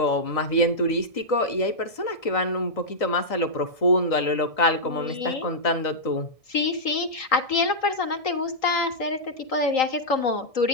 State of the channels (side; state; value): right; late; 1.6 ms